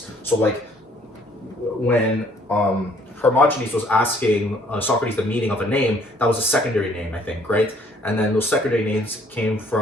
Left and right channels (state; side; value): normal; both; correlation 0.61